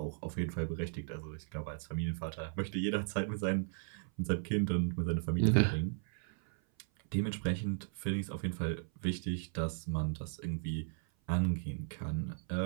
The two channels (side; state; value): left; silent; 54 dB below the other